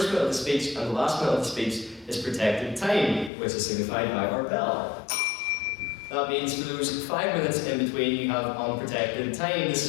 minute of the speech and the last minute of the speech is protected time, which is signified by our bell. That means for those 5 minutes in between, you have unprotected time. This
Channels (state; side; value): drops out; right; at 3.3 s